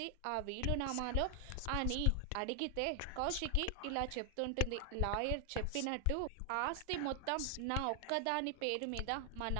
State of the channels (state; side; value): different; both; correlation 0.00